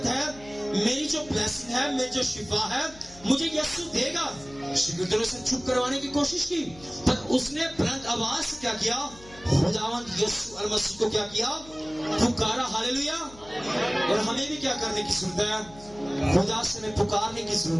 ہے, میری جو بلیسنگ ہے, میری جو شفا ہے, مجھے یسوع دے گا. شاگردوں نے اسے چپ کروانے کی کوشش کی, پر اس نے بلند آواز سے کیا کیا, خداوند یسوع المسیح کو کیا کیا, پکارا. ہاللیلویا. اور ہمیں بھی کیا کرنے کی ضرورت ہے, خدا سے ہمیں پکارنے کی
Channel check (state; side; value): noise; left; hum, 21 dB below the sound